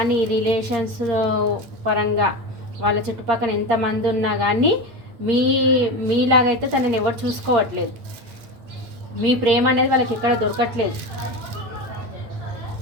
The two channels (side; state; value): left; late; 8.7 ms